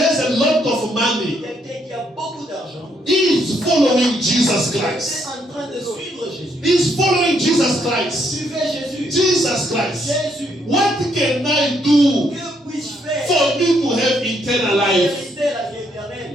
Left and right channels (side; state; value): both; normal; correlation 0.73